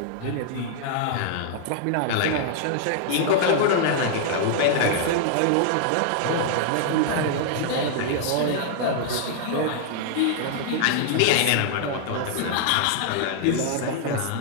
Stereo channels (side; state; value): both; different; correlation -0.01